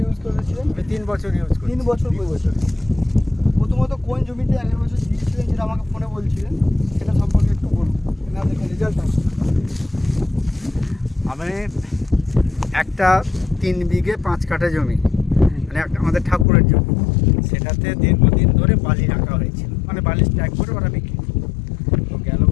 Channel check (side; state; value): right; drops out; at 16.4 s